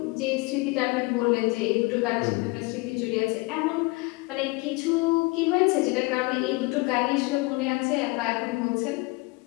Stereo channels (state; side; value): quieter; right; 25.4 dB